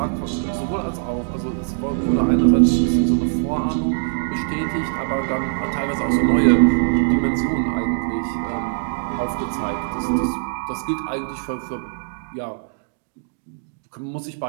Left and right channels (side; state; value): left; silent; digital silence